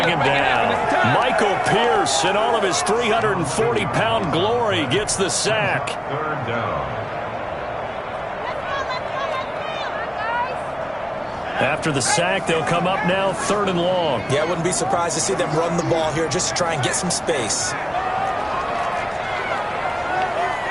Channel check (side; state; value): both; identical; correlation 1.00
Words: him down. Michael Pierce, in all of his 340-pound glory, gets the sack. 3rd down. After the sack, they'll come up now 3rd and long. Yeah, I wouldn't be surprised to see them run the ball here just to try and get some space.